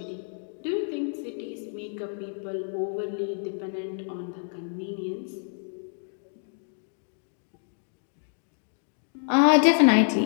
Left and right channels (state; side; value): silent; right; digital silence